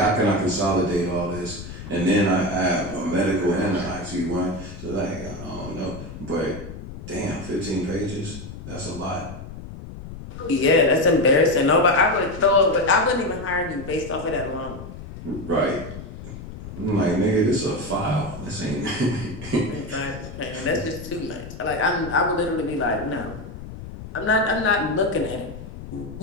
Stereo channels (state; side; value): noise; left; rumble, 12 dB below the sound